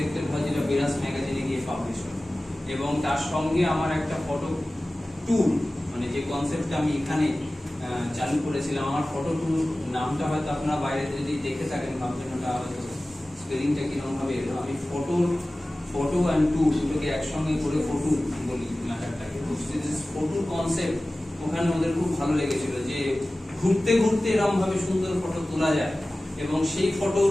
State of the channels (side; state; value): both; normal; correlation 0.97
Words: হয়, যেটা বেরাস ম্যাগাজিনে গিয়ে পাবলিশ হয়। এবং তার সঙ্গে আমার একটা ফটো ট্যুর, মানে যে কনসেপ্টটা আমি এখানে চালু করেছিলাম, আমার ফটো ট্যুর নামটা হয়তো আপনারা বাইরে যদি দেখে থাকেন ভাবছেন ওটা হয়তো স্পেলিংটা কিরকম ভাবে এলো। আমি ফটো অ্যান্ড ট্যুর দুটোকে একসঙ্গে করে ফটো বলি ম্যাটারটাকে। ফটো কনসেপ্ট ওখানে ওদের খুব ভালো লেগেছিল যে ঘুরতে ঘুরতে এরকম ভাবে সুন্দর ফটো তোলা যায় এবং সেই ফটোর